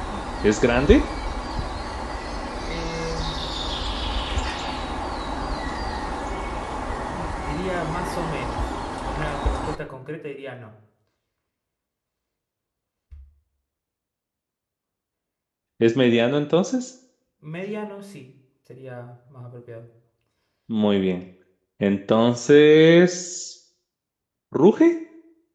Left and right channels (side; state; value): both; identical; correlation 1.00